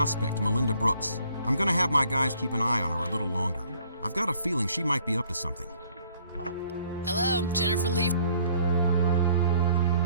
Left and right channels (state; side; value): inverted; both; correlation -0.60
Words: Melinda Brooks. I'm gonna have my guys keep an eye on her a little longer. I've got a feeling she might be up to something. Hello, Jennifer Lee.